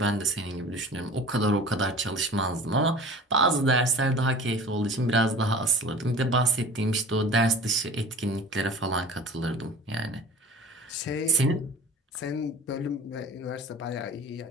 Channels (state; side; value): normal; both; correlation 0.41